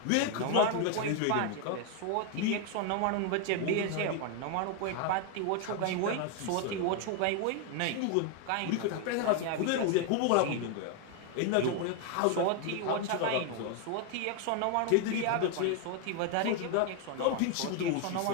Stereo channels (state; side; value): different; both; correlation 0.01